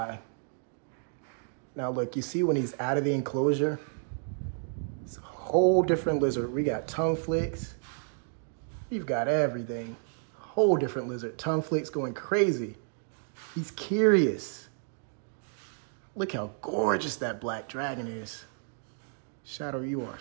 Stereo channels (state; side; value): silent; left; 57 dB below the other